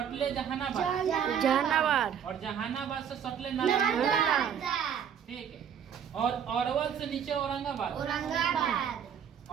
जहानाबाद, जहानाबाद। और जहानाबाद से सटले नालंदा, ठीक है। और अरवल से नीचे औरंगाबाद,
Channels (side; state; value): left; quieter; 8.3 dB